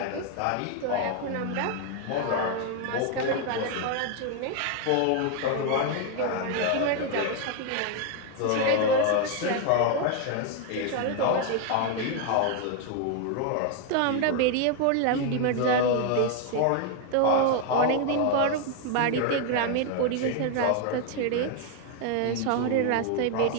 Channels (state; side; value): different; both; correlation 0.00